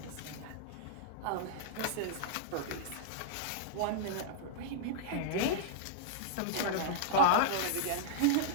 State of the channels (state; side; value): different; both; correlation -0.02